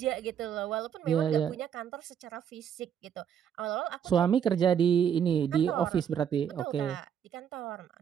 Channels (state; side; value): quieter; left; 8.5 dB